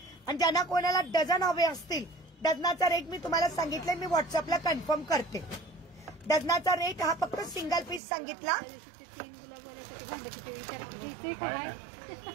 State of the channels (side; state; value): left; drops out; at 8.0 s